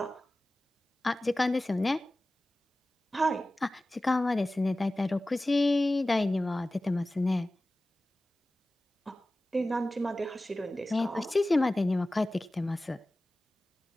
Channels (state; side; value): normal; both; correlation 0.97